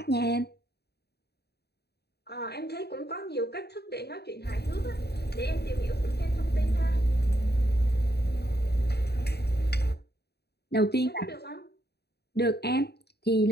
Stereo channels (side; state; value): right; late; 0.48 ms